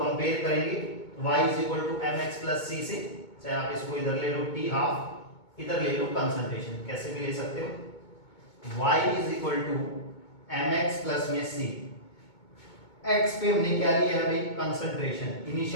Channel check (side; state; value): right; late; 2.2 ms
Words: करेंगे y is equal to mx plus c से, चाहे आप इसको इधर ले लो टी हाफ, इधर ले लो कंसंट्रेशन, कैसे भी ले सकते हो। y is equal to mx plus में c, x पे हमने क्या लिया है भाई, कंसंट्रेशन,